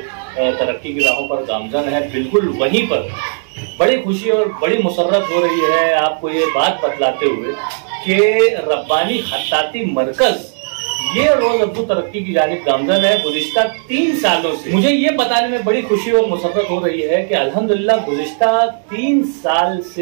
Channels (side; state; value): left; silent; digital silence